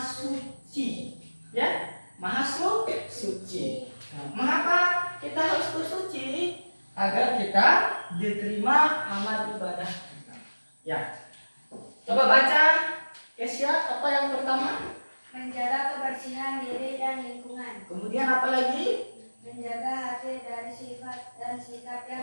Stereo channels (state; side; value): inverted; both; correlation -1.00